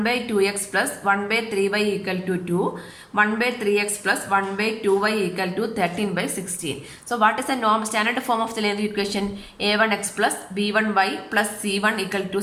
by 2x plus 1 by 3y equal to 2. 1 by 3x plus 1 by 2y equal to 13 by 16. So what is the norm standard form of the linear equation? A1x plus b1y plus c1 equal to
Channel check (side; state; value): both; identical; correlation 1.00